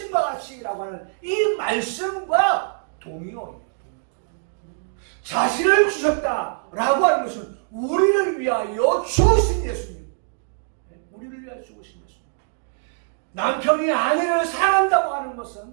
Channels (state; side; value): silent; left; digital silence